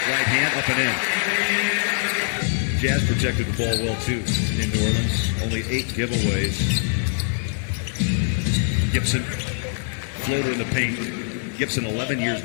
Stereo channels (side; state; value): right; silent; 62 dB below the other